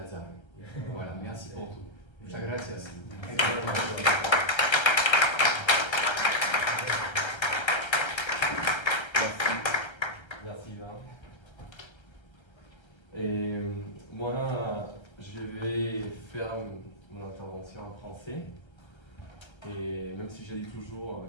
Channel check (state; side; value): late; right; 1.3 ms